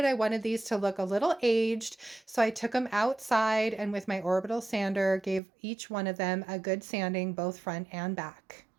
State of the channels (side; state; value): left; drops out; at 5.4 s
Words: I wanted these to look a little aged, so I took them outside and with my orbital sander gave each one of them a good sanding both front and back.